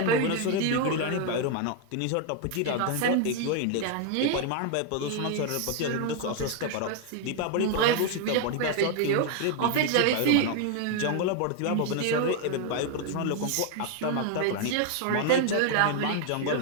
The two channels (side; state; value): both; different; correlation 0.00